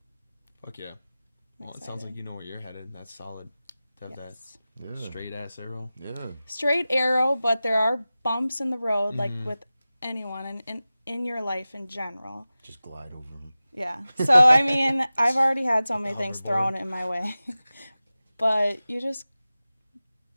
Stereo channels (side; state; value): both; inverted; correlation -0.96